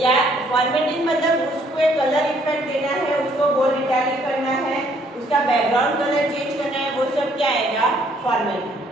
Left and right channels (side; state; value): both; normal; correlation 0.65